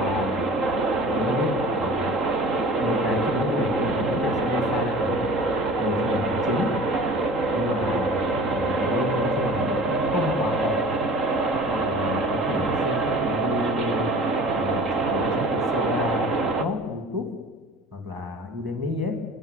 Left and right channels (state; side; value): normal; both; correlation 0.43